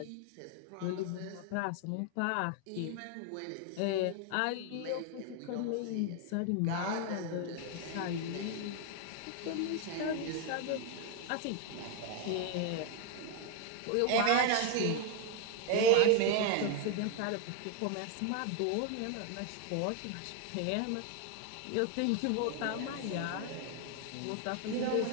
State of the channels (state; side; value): different; both; correlation 0.01